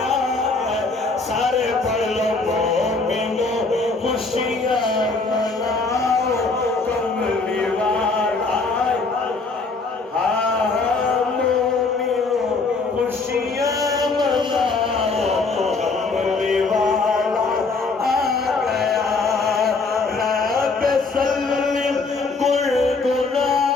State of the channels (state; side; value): quieter; right; 3.9 dB